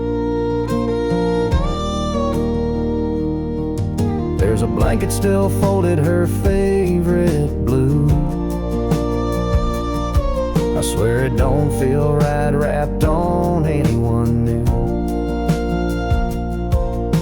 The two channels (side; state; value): both; identical; correlation 1.00